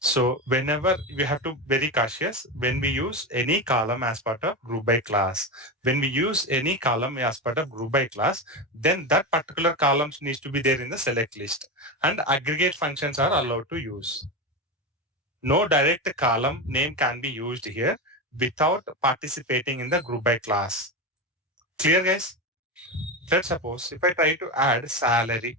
whenever we have to very cautious when we use any column as part of group by class. When we use any column as part of group by class, then that particular columns needs to be there in the select list, and aggregate functions are allowed to use. No direct column name can be used here without participating in the group by class. Clear, guys? Let's suppose if I try to add salary.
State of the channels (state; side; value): normal; both; correlation 0.17